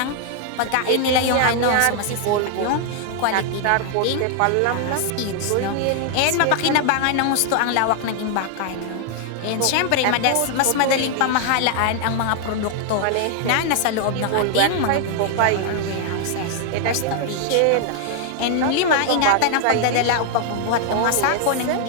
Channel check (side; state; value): both; different; correlation 0.00